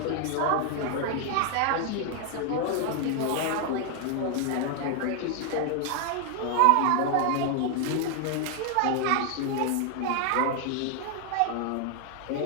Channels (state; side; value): different; both; correlation 0.00